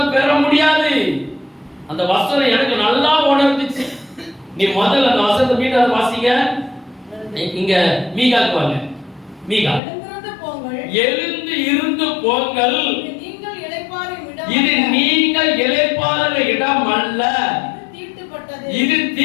பெற முடியாது. அந்த வசனம் எனக்கு நல்லா உணர்ந்துச்சு. நீ முதல்ல அந்த வசனத்தை மீண்டும் வாசிங்க. இங்க மீகாக்கு வாங்க. மீகா, எழுந்து இருந்து போங்கள், இது நீங்கள் இளைப்பாறுகிற இடம் அல்ல, இது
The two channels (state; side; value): drops out; right; at 9.8 s